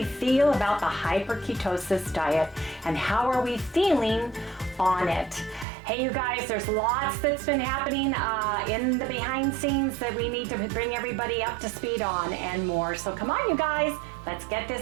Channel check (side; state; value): left; drops out; at 5.7 s